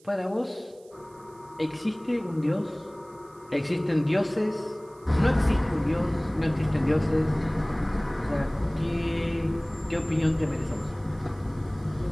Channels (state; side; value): noise; right; hiss, 29 dB below the sound